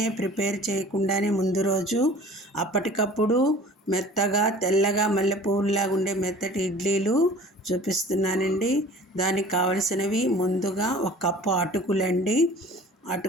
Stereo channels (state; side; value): normal; both; correlation 0.45